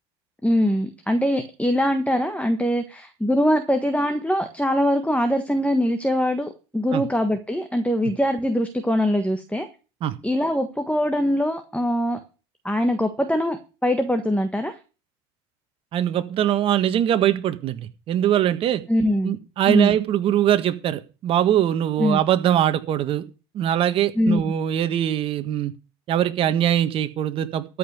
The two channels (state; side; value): quieter; left; 3.3 dB